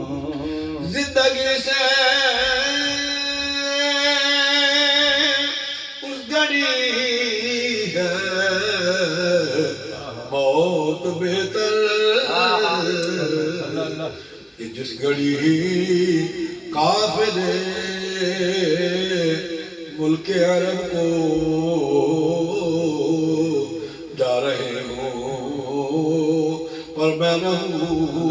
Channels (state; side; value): identical; both; correlation 1.00